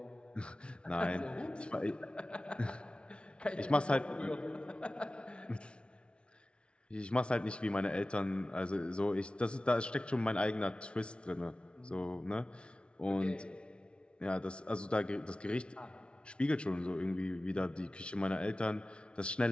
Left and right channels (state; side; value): late; right; 0.058 ms